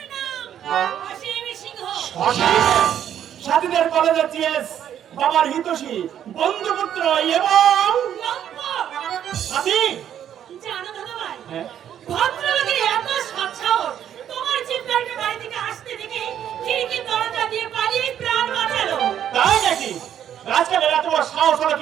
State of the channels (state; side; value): quieter; left; 10.0 dB